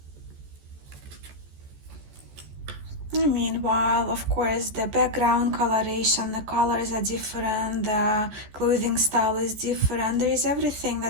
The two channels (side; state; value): left; late; 14 ms